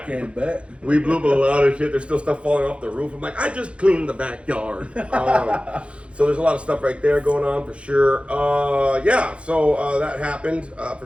Bet. We blew up a lot of shit. There's still stuff falling off the roof. I'm like, I just cleaned the backyard. So there's a lot of stuff right there going on for sure. Yeah, so that happened for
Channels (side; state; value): left; late; 0.060 ms